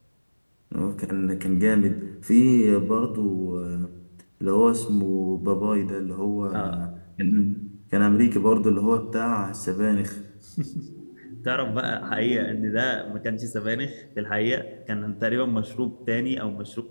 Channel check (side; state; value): both; inverted; correlation -1.00